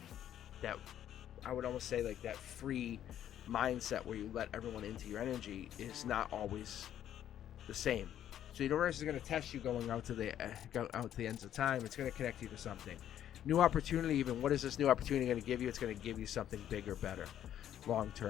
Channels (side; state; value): right; quieter; 10.9 dB